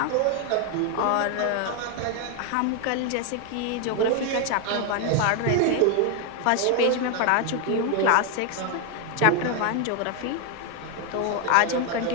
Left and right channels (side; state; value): both; different; correlation 0.01